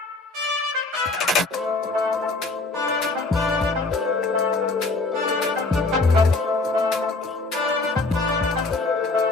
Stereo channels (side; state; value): right; quieter; 3.4 dB